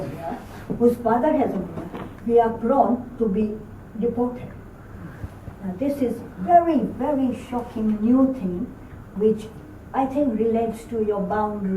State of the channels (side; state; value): both; identical; correlation 1.00